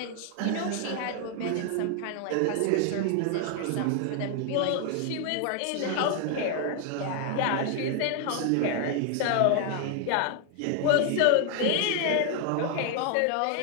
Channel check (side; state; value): both; different; correlation 0.00